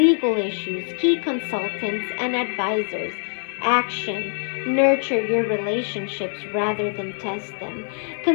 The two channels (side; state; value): right; silent; 63 dB below the other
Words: issues, key consultants, and advisors. Action. Nurture your relationships rather than test them.